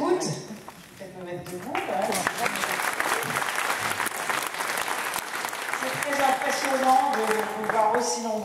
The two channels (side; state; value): both; identical; correlation 1.00